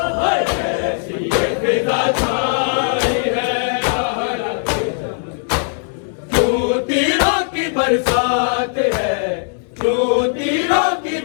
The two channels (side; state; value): right; silent; 66 dB below the other